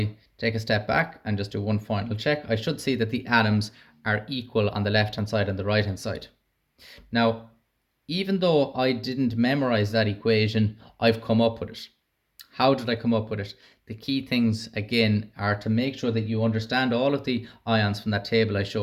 take a step back and just do one final check, I should see that the atoms are equal on the left hand side and the right hand side. Now, even though I didn't memorize that equation, I've come up with it. How did I come up with it? The key things again are to make sure that you understand all of the ions from that table I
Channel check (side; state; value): both; identical; correlation 1.00